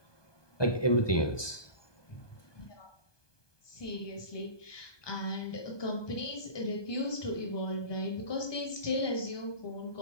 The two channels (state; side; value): late; right; 1.2 ms